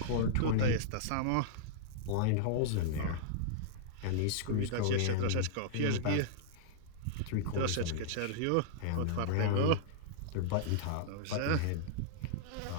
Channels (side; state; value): both; different; correlation -0.02